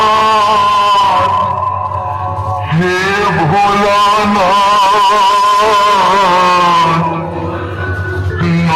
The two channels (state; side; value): identical; both; correlation 1.00